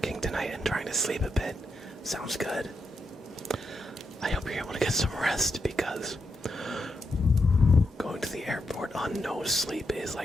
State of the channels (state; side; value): normal; both; correlation 0.84